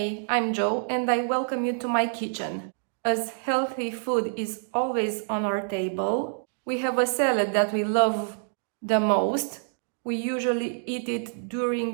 I'm Joe and I welcome you to my kitchen. As healthy food is always on our table, we have a salad that we love the most. We usually eat it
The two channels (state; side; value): silent; left; digital silence